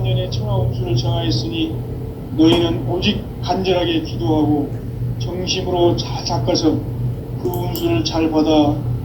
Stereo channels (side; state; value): both; identical; correlation 1.00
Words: 년의 천하 운수를 정하였으니 너희는 오직 간절하게 기도하고 정심으로 잘 닦아서 그 운수를 잘 받아